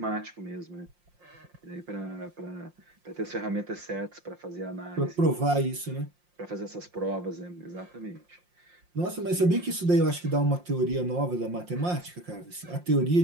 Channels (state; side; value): late; left; 5.7 ms